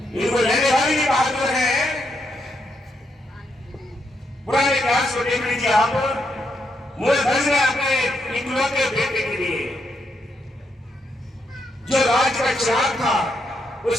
इनको लेने वाली भी बहादुर है। पुराने इतिहास को देख लीजिए आप। मूलधन ने अपने इकलौते बेटे के लिए जो राज का चिराग था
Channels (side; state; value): both; normal; correlation 0.79